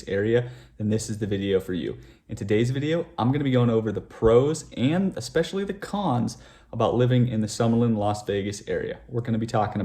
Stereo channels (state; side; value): identical; both; correlation 1.00